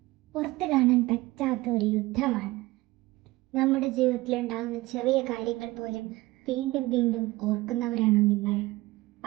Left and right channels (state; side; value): quieter; left; 19.7 dB